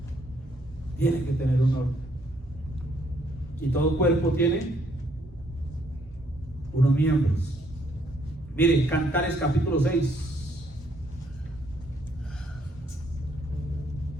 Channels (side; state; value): both; normal; correlation 0.69